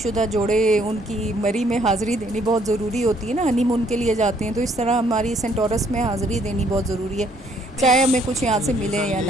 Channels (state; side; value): normal; both; correlation 0.66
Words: जोड़े, उनकी मरी में हाज़िरी देनी बहुत ज़रूरी होती है ना, हनीमून के लिए जाते हैं, तो इस तरह हमारी सेंटोरस में हाज़िरी देनी बहुत ज़रूरी है, चाहे हमें कुछ यहाँ से मिले या